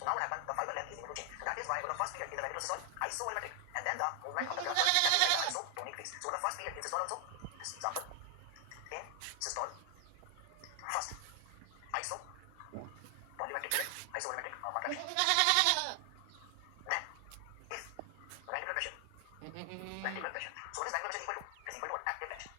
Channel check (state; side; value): different; both; correlation 0.00